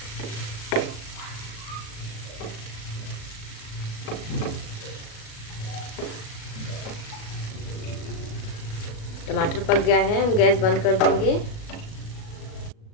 टमाटर पक गया है, हम गैस बंद कर देंगे।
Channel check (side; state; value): right; late; 37 ms